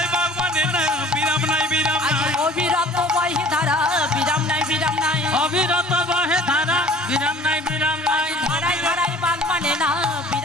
বাগ মানে না বিরাম নাই বিরাম নাই অবিরত বহে ধারা বিরাম নাই বিরাম নাই অবিরত বহে ধারা বিরাম নাই বিরাম নাই ধারাই ধারাই বান মানে না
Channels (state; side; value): normal; both; correlation 0.49